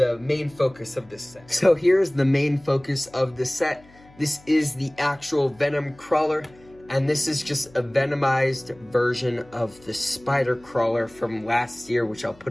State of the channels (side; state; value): left; noise; hum, 26 dB below the sound